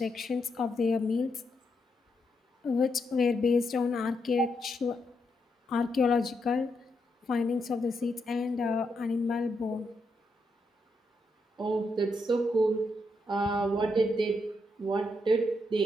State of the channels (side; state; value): both; normal; correlation 0.81